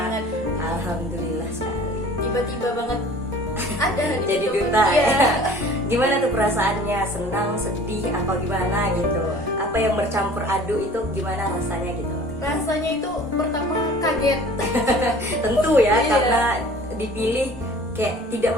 Alhamdulillah sekali. Tiba-tiba banget ada di Jadi situ. duta Iya. ya. Gimana tuh perasaannya? Senang, sedih, apa gimana gitu? Apa yang bercampur aduk itu gimana rasanya gitu? Rasanya itu pertama kaget. Tentu ya, Iya. karena dipilih kayak tidak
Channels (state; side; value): normal; both; correlation 0.47